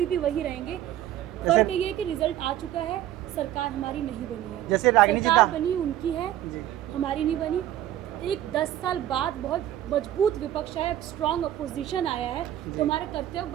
भी वही रहेंगे। फर्क ये है कि रिजल्ट आ चुका है, सरकार हमारी नहीं बनी है। जैसे रागिनी जी सरकार का बनी उनकी है, जी हमारी नहीं बनी। एक 10 साल बाद बहुत मजबूत विपक्ष है, स्ट्रांग अपोजिशन आया है, तो हमारा कर्तव्य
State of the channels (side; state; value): left; quieter; 12.5 dB